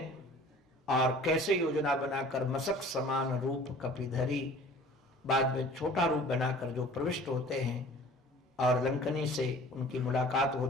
और कैसे योजना बनाकर मशक समान रूप कपिधरी, बाद में छोटा रूप बनाकर जो प्रविष्ट होते हैं, और लंकनी से उनकी मुलाकात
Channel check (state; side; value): normal; both; correlation 0.47